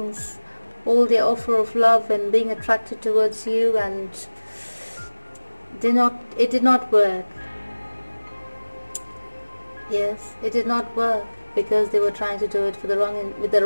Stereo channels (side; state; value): both; inverted; correlation -1.00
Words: All their offer of love and being attracted towards you, and it did not work. Yes, it did not work because they were trying to do it for with the